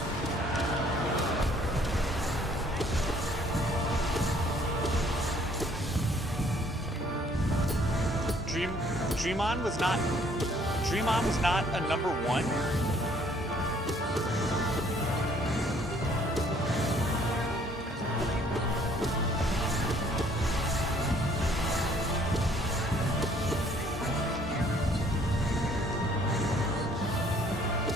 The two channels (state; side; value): normal; both; correlation 0.60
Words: Dream On was not a number one.